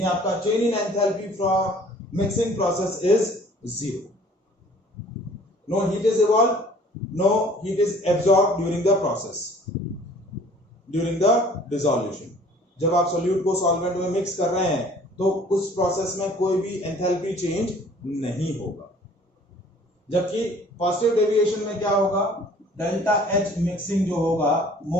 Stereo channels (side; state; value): both; normal; correlation 0.53